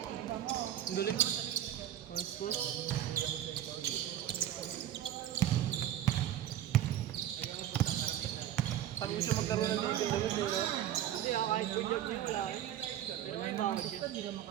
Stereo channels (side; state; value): left; quieter; 11.6 dB